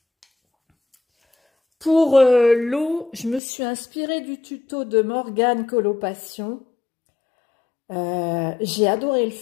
pour l'eau, je me suis inspirée du tuto de Morgane Colopassion. J'ai adoré le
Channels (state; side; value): drops out; right; at 3.4 s